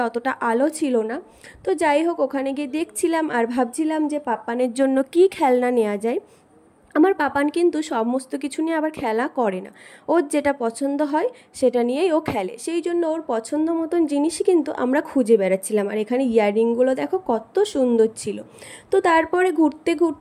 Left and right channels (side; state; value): both; identical; correlation 1.00